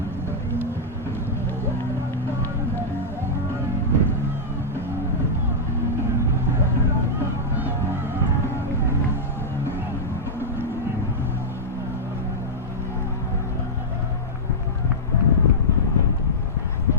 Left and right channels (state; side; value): normal; both; correlation -0.08